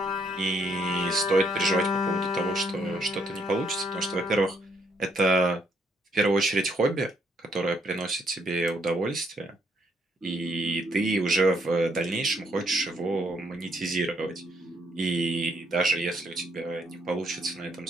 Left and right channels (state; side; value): normal; both; correlation 0.72